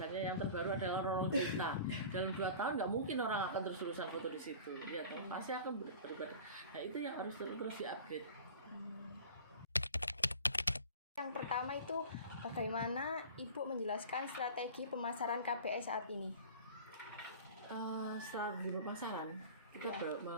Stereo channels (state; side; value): inverted; both; correlation -0.40